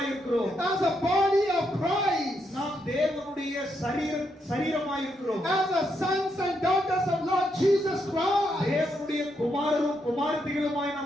இருக்கிறோம் as a body of Christ, நாம் தேவனுடைய சரீரமாய் இருக்கிறோம் as the sons and daughters of Lord Jesus Christ, தேவனுடைய குமாரரும் குமாரத்திகளுமாய்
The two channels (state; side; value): normal; both; correlation 0.79